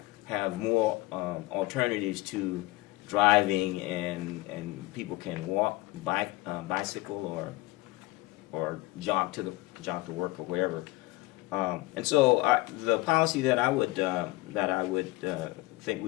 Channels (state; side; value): quieter; right; 21.0 dB